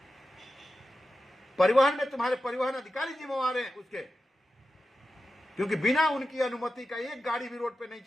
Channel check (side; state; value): both; normal; correlation 0.92